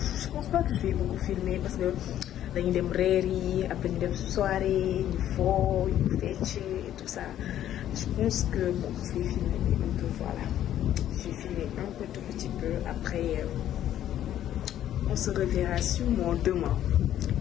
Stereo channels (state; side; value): quieter; right; 11.6 dB